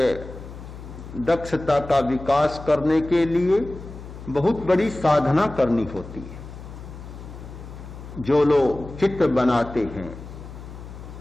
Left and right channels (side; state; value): left; noise; hum, 13 dB below the sound